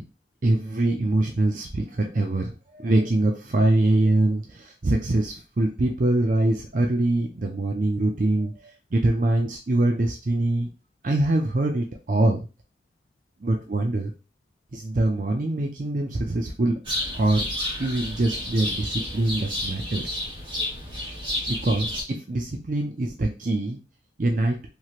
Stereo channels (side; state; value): both; normal; correlation 0.84